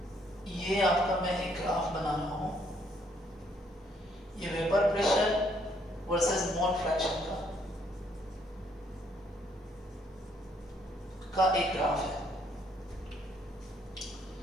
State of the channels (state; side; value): normal; both; correlation 0.68